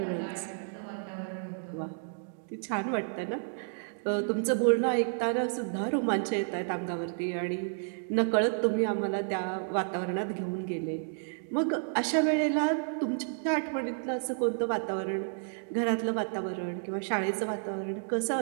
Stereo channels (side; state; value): left; silent; digital silence